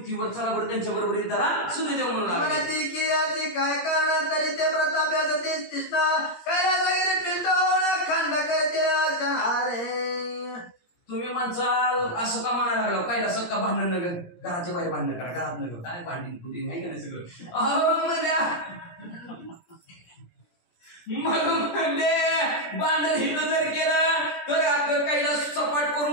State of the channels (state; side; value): late; right; 17 ms